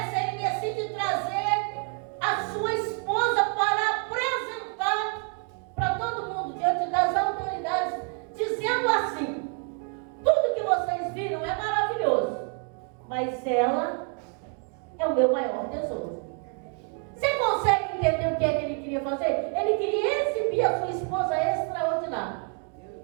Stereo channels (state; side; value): quieter; left; 38.2 dB